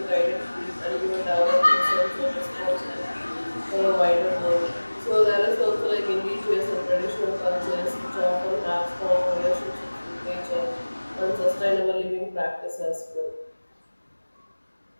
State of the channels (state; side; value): inverted; both; correlation -1.00